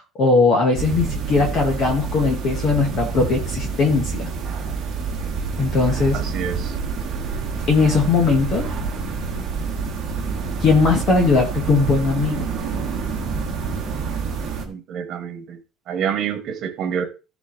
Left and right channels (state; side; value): normal; both; correlation 0.50